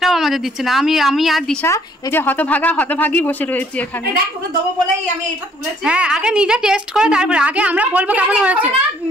আমাদের দিচ্ছে না। আমি আর দিশা এই যে হতভাগী বসে রয়েছি এখানে। দেখ তোকে দেবো বলেই আমি এটা তুলেছি। হ্যাঁ আগে নিজে টেস্ট করে তারপরে আগে আমরা বলবো কেমন হয়েছে।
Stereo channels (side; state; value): both; normal; correlation 0.62